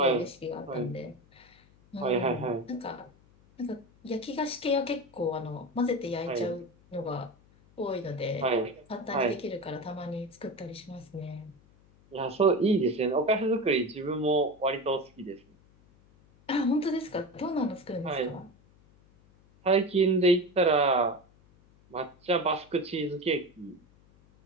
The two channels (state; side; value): noise; left; hum, 29 dB below the sound